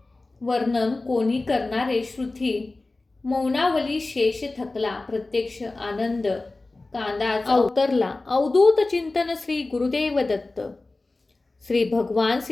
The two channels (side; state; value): right; quieter; 3.2 dB